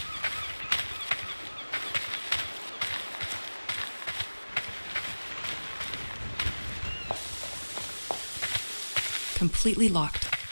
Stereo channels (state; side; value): inverted; both; correlation -1.00